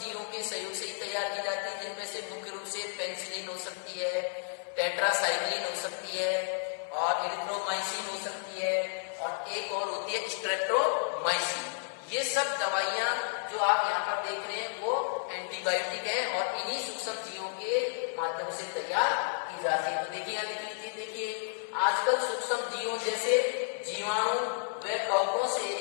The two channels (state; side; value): silent; right; 56 dB below the other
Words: के सहयोग से ही तैयार की जाती है, जिनमें से मुख्य रूप से पेनिसिलिन हो सकती है, टेट्रासाइक्लिन हो सकती है और इरिथ्रोमाइसिन हो सकती है और एक और होती है स्ट्रेप्टोमाइसिन। ये सब दवाइयां जो आप यहाँ पर देख रहे हैं वो एंटीबायोटिक है और इन्हीं सूक्ष्म जीवों के माध्यम से तैयार की जाती है। तो देखिए यहाँ देख लीजिए, देखिए आजकल सूक्ष्म जीवों जैसे जीवाणु व कवकों से